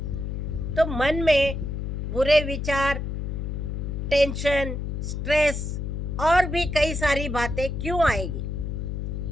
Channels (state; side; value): noise; left; hum, 3 dB below the sound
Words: तो मन में बुरे विचार, टेंशन, स्ट्रेस और भी कई सारी बातें क्यों आएगी?